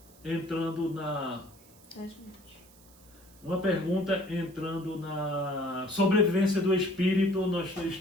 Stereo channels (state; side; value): noise; right; hiss, 25 dB below the sound